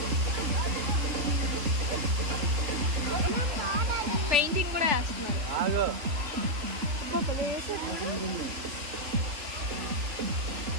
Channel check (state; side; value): late; left; 3.3 ms